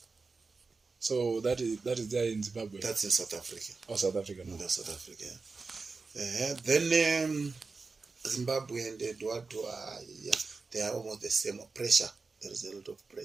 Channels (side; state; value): left; quieter; 4.2 dB